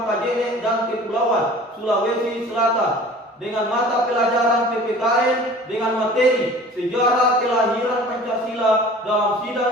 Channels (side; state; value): both; normal; correlation 0.45